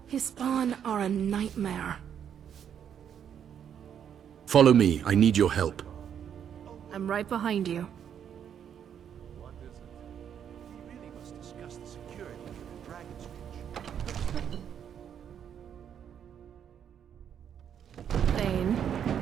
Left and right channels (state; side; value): quieter; left; 8.7 dB